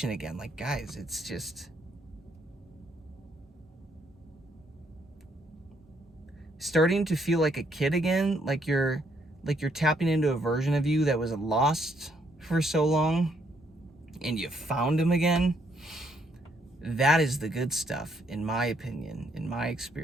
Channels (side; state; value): both; normal; correlation 0.72